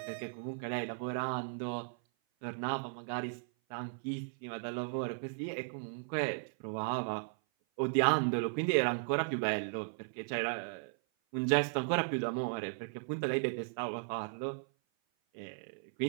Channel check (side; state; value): left; silent; 54 dB below the other